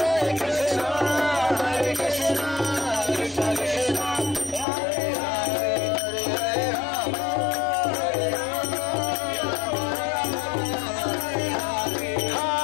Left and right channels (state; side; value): drops out; right; at 4.7 s